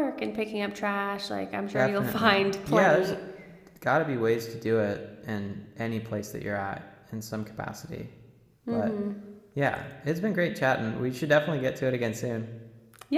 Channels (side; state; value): both; identical; correlation 1.00